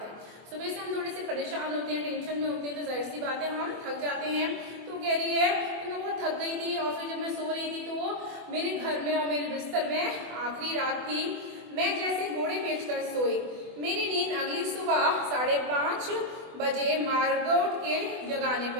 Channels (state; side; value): late; left; 24 ms